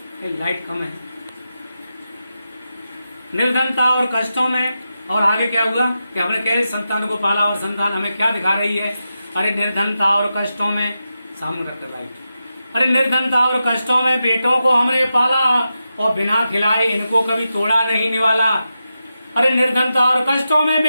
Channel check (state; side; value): inverted; both; correlation -0.89